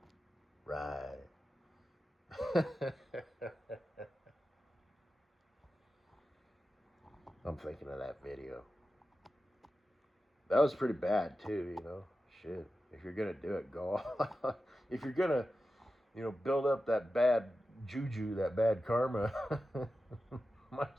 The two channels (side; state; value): both; normal; correlation 0.92